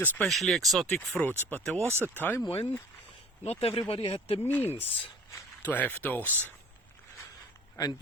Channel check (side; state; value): both; normal; correlation 0.46